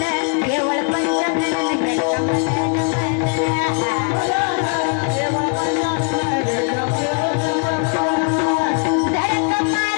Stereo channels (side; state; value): right; quieter; 37.7 dB